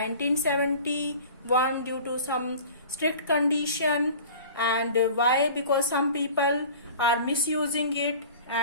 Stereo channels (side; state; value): both; inverted; correlation -0.42